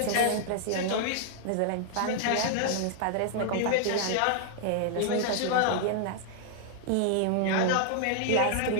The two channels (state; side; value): different; both; correlation -0.01